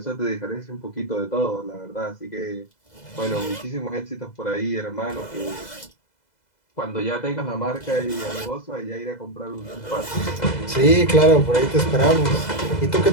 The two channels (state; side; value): late; right; 2.0 ms